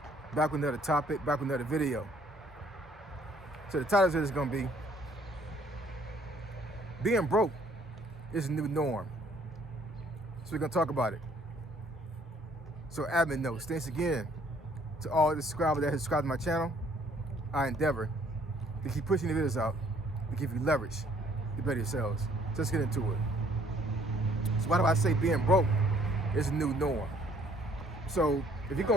Back with another topic, back with another video. So the title of this is gonna be being broke is a new norm. So we're gonna talk about it. So admin notes, thanks again to all the subscribers that have subscribed to my channel. I endeavor to keep pushing the videos out to give you leverage to better yourselves. So let's get into it. So why do I say being broke is a new norm? So if you go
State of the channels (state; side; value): normal; both; correlation 0.62